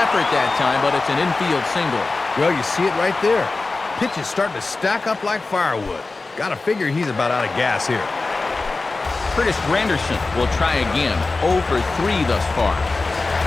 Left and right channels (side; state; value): right; quieter; 3.6 dB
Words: that time, but it's an infield single. Well, you see it right there. Pitch is starting to stack up like firewood. Gotta figure he's about out of gas here. Curtis Granderson will try again. 0 for 3 thus far.